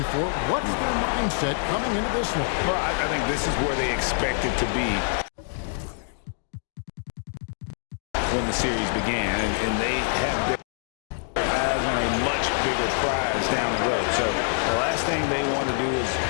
What's their mindset coming into this one? Well, I think this is where they expect it to be when the series began, and they have their eyes on a much bigger prize down the road. So the last thing they want to do is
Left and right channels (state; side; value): silent; right; 61 dB below the other